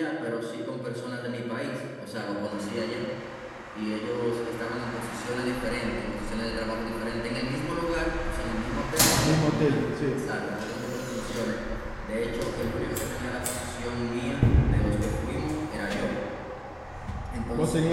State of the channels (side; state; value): both; identical; correlation 1.00